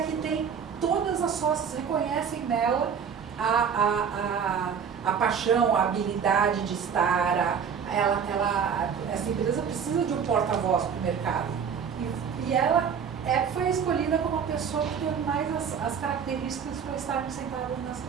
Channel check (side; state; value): left; quieter; 7.0 dB